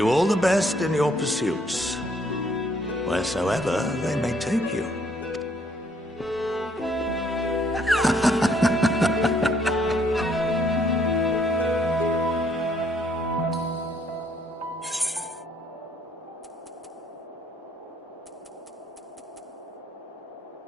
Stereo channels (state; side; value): normal; both; correlation 0.67